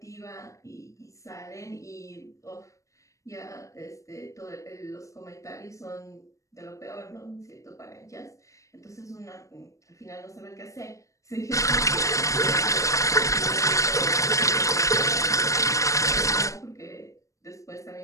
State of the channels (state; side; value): late; right; 0.15 ms